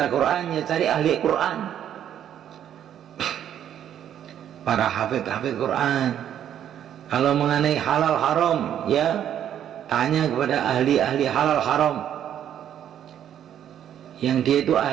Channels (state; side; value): quieter; left; 10.1 dB